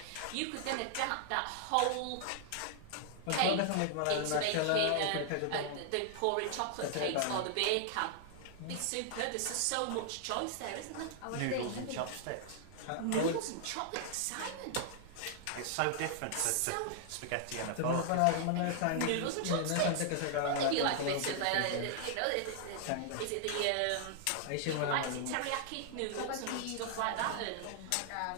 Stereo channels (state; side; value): different; both; correlation 0.00